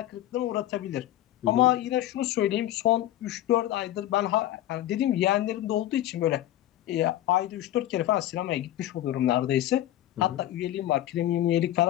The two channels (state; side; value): quieter; right; 13.7 dB